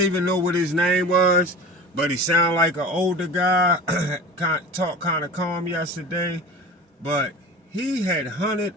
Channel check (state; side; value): normal; both; correlation 0.36